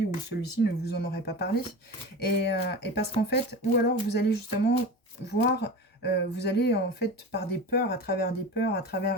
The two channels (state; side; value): normal; both; correlation 0.31